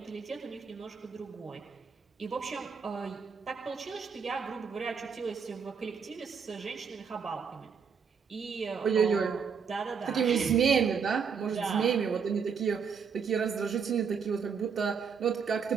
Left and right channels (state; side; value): quieter; left; 6.2 dB